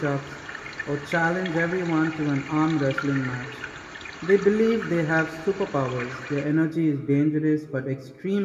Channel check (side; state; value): both; identical; correlation 1.00